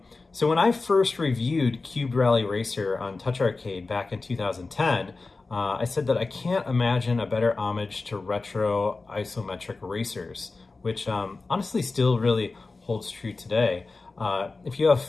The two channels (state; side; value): quieter; right; 3.7 dB